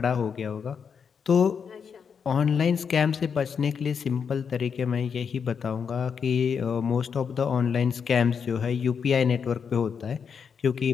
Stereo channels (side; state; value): right; quieter; 6.6 dB